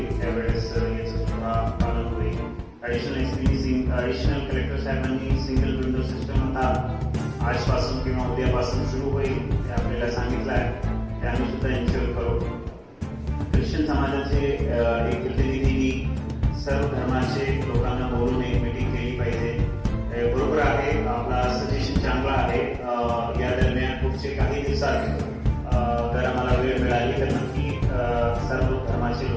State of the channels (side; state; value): both; identical; correlation 1.00